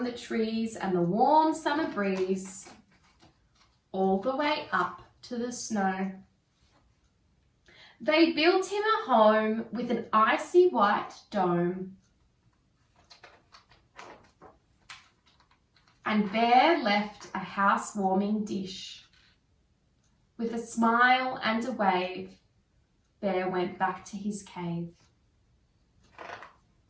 the trees and the warm summer breeze, all the way up to the snow. They built him a home with an icy white dome, and Bear left a house-warming dish. With a smile and a wave, Bear went back to his cave.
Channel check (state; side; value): identical; both; correlation 1.00